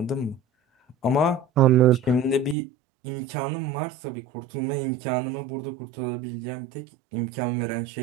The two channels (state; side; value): drops out; left; at 2.6 s